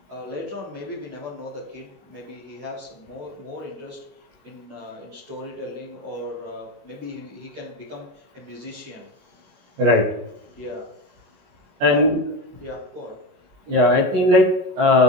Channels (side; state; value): left; late; 21 ms